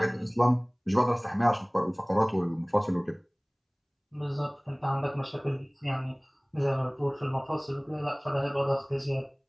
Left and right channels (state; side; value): identical; both; correlation 1.00